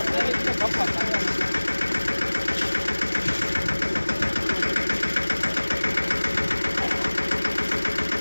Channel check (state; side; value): inverted; both; correlation -1.00